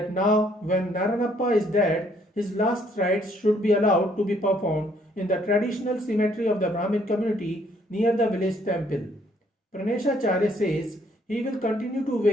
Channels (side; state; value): both; normal; correlation 0.65